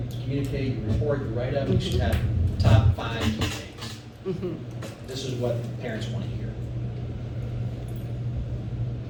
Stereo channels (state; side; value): identical; both; correlation 1.00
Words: communicate, your report, your write-up, you should have top 5 key things. Mhm. This is what parents want to hear.